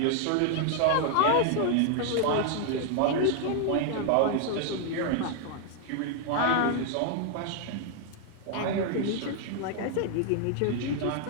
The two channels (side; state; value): both; different; correlation 0.00